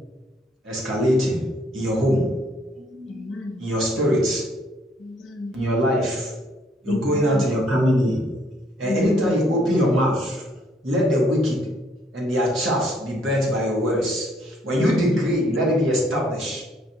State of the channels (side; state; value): both; normal; correlation 0.66